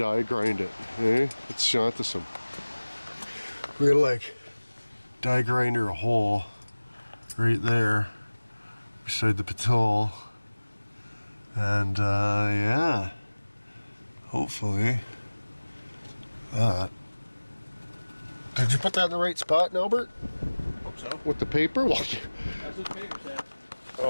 grind it. Eh? It's shantasome. We're gonna like die grinder a hole right there beside the patrol. And yeah, hopefully that. Did you put that in the right spot, Albert? Hope so. With the paper? Well, That's what the paper said.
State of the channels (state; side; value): inverted; both; correlation -1.00